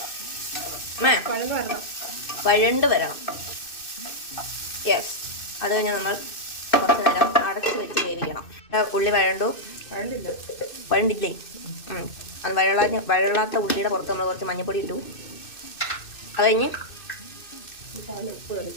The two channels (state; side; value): late; right; 2.6 ms